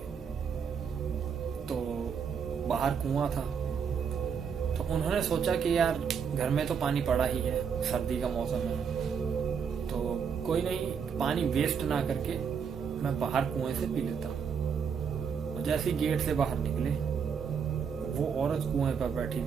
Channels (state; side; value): quieter; left; 6.7 dB